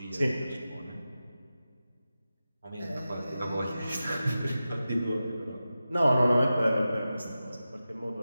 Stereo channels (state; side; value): inverted; both; correlation -0.93